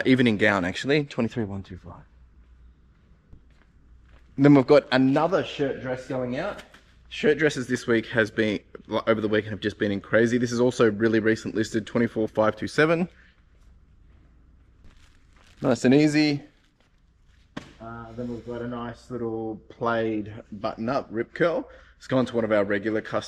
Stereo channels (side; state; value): both; identical; correlation 1.00